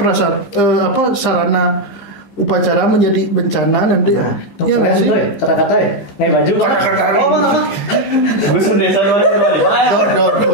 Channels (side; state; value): right; late; 15 ms